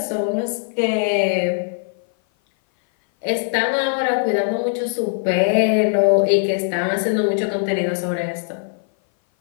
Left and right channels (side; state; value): right; silent; 58 dB below the other